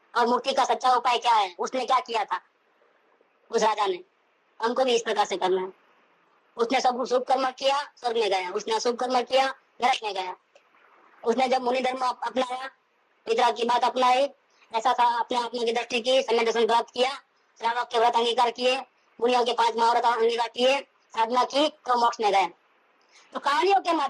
और मुक्ति का सच्चा उपाय क्या है। उसने क्या किया था उस राजा ने, हमको भी इस प्रकार से करना है। उसने सब शुभ कर्म किया, स्वर्ग में गया, उसने अशुभ कर्म किया, नरक में गया। उसने जब मुनि धर्म अपनाया, पितरा की बात अपनाई, ऐसा था, अपने आत्मा की दृष्टि की, समय दर्शन प्राप्त किया, श्रावक के व्रत अंगीकार किए, मुनियों के 5 महाव्रत अंगीकार किए, साधना की, तो मोक्ष में गए। तो कहानियों के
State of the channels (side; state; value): both; identical; correlation 1.00